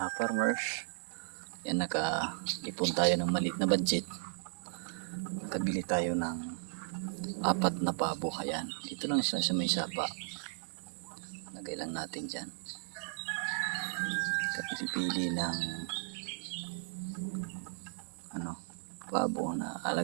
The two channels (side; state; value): left; silent; digital silence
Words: Yan, naka-ipon tayo ng maliit na budget. Nakabili tayo ng 4 na pabo. Ayan, dito lang sila sa may sapa. Lagay lang natin dyan. Kapili-pili ng pabo na